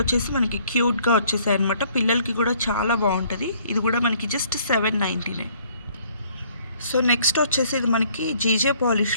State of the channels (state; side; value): inverted; both; correlation -0.62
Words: వచ్చేసి మనకి క్యూట్గా వచ్చేసాయి అనమాట. పిల్లలకి కూడా చాలా బాగుంటుంది. ఇది కూడా మనకి జస్ట్ 799. సో నెక్స్ట్ వచ్చేసి ఇది మనకి జీజే